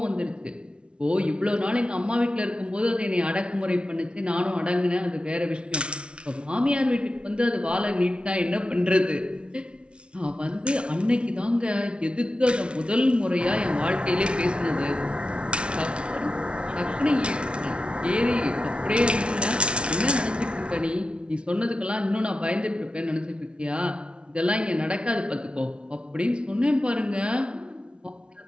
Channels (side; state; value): left; late; 0.058 ms